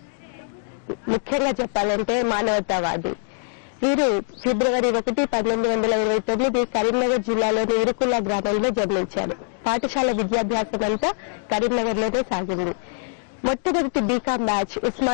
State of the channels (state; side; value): silent; right; digital silence